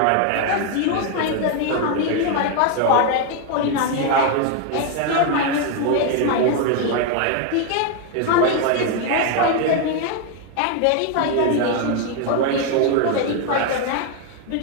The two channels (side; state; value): both; different; correlation 0.01